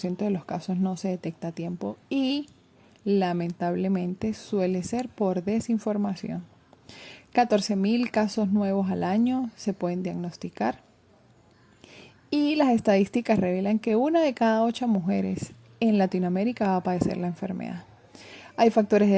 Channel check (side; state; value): both; identical; correlation 1.00